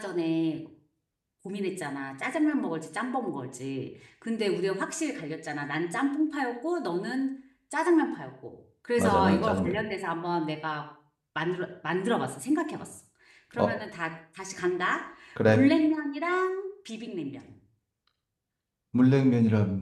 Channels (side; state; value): both; identical; correlation 1.00